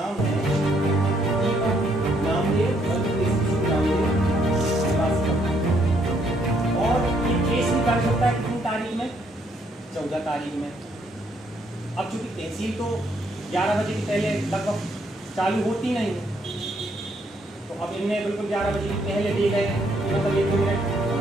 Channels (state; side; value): normal; both; correlation 0.71